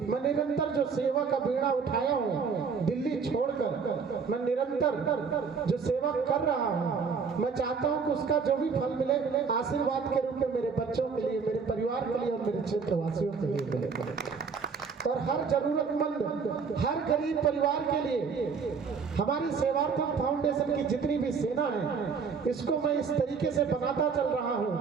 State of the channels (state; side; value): quieter; left; 5.6 dB